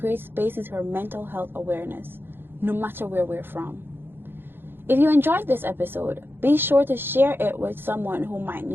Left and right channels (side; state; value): left; late; 0.10 ms